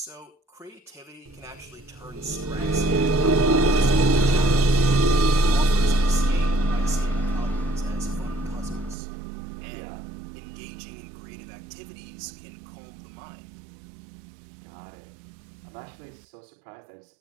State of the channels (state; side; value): drops out; left; at 9.0 s